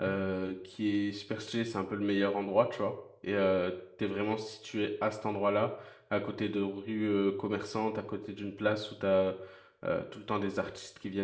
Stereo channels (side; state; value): both; identical; correlation 1.00